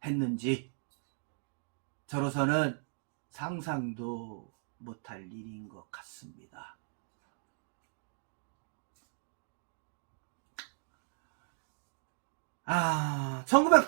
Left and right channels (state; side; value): silent; left; digital silence